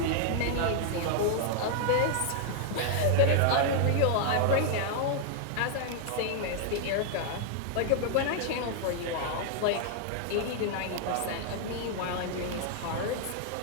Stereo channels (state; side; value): different; both; correlation 0.00